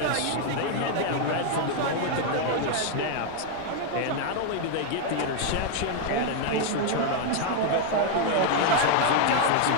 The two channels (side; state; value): both; different; correlation 0.00